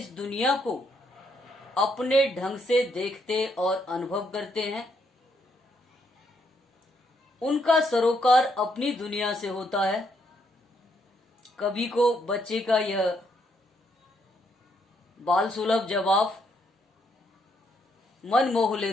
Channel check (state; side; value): normal; both; correlation 0.74